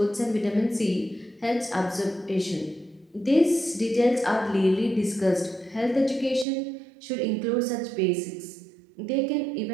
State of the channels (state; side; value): drops out; left; at 6.5 s